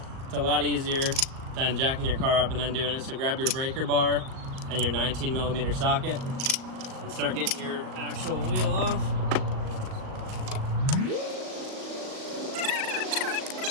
It's a lot easier than jacking your car up and then doing it. So grab your breaker bar and your 19 millimeter socket and start getting your actual wheel off.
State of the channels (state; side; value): late; left; 38 ms